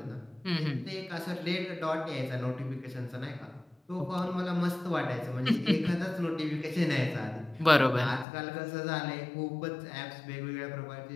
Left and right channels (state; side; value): drops out; right; at 8.2 s